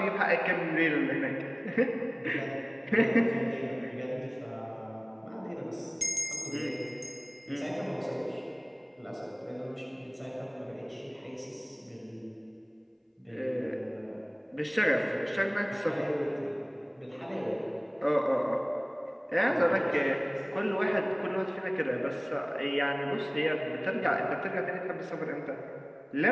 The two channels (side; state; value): both; identical; correlation 1.00